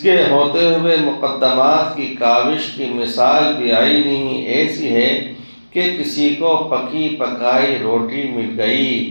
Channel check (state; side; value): inverted; both; correlation -1.00